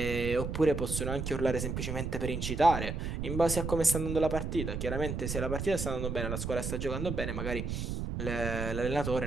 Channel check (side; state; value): right; noise; rumble, 3 dB below the sound